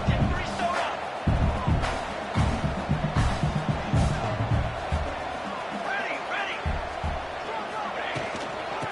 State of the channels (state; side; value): identical; both; correlation 1.00